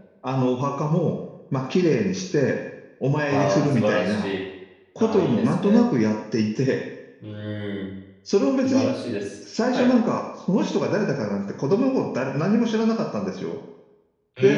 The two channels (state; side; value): identical; both; correlation 1.00